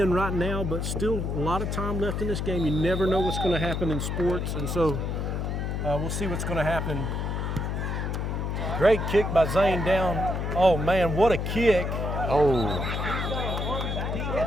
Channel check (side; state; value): left; noise; hum, 2 dB below the sound